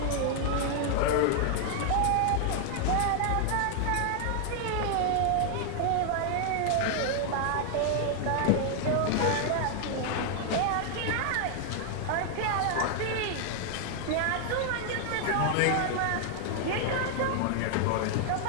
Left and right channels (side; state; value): both; different; correlation 0.00